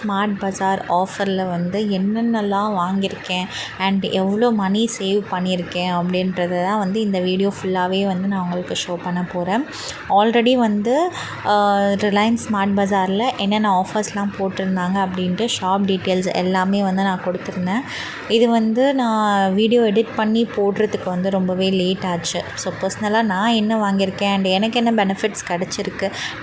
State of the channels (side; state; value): both; identical; correlation 1.00